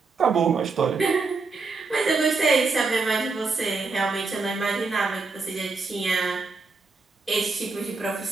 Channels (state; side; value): quieter; left; 4.1 dB